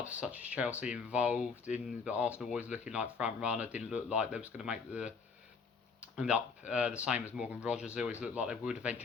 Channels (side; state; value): right; quieter; 5.3 dB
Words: such as Chelsea involved in, but Arsenal always looking like front runner. Didn't look like they was going to make the end up the same as Morgan Rogers. They always looked like they would